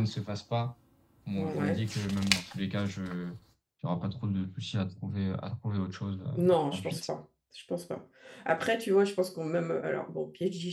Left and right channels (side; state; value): both; identical; correlation 1.00